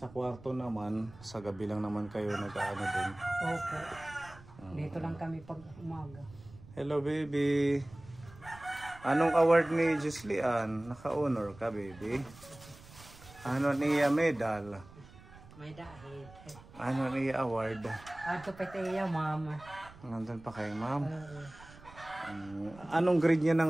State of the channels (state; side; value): noise; right; rumble, 20 dB below the sound